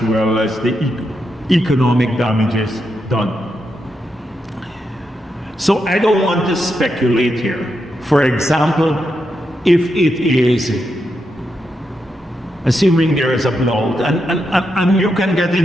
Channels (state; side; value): normal; both; correlation 0.84